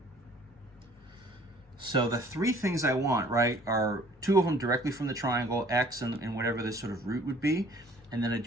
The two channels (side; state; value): both; normal; correlation 0.55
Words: So the 3 things I want, right, are 2 of them directly from the triangle, x and whatever this sort of root would be. And then I